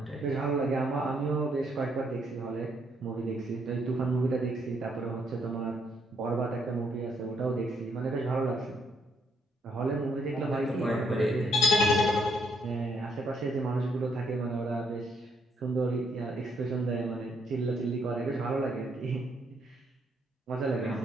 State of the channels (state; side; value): normal; both; correlation 0.72